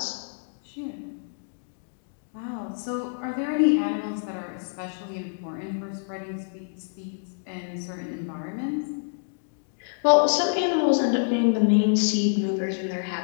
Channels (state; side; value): silent; right; digital silence